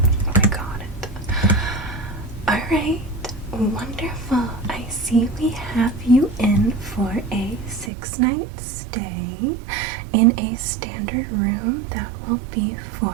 Okay, got it. Alright, wonderful. I see we have you in for a 6-night stay in a standard room that will be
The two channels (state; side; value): drops out; left; at 7.9 s